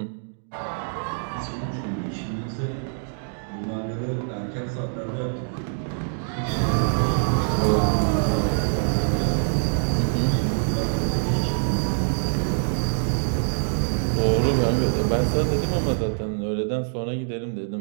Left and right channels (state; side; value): silent; left; digital silence